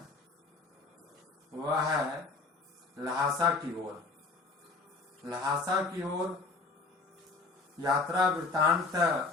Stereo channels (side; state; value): right; quieter; 3.9 dB